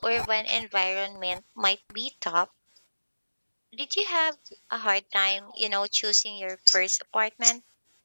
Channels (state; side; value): inverted; both; correlation -1.00